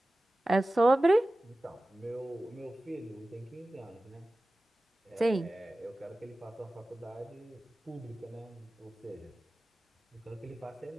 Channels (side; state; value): both; normal; correlation 0.96